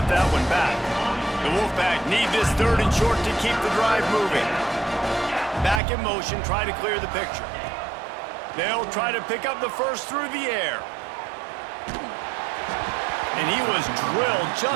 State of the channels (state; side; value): drops out; left; at 5.8 s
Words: that one back. The Wolfpack need this third and short to keep the drive moving. Back in motion, try to clear the picture. They'll try to pick up the first through the air. And he was drilled